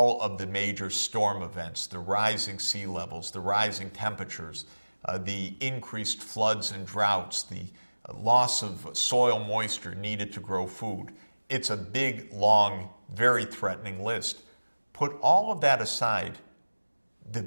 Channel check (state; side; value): inverted; both; correlation -1.00